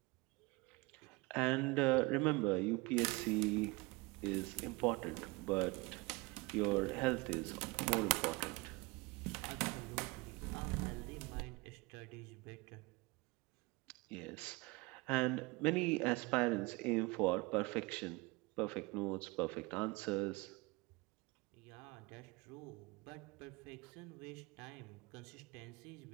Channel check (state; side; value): quieter; left; 25.2 dB